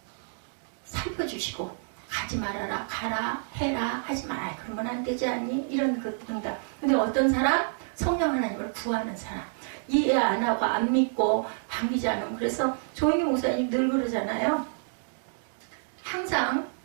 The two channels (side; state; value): left; silent; digital silence